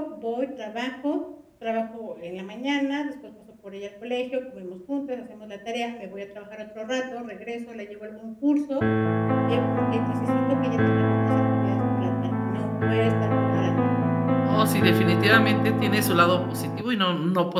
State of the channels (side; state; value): both; identical; correlation 1.00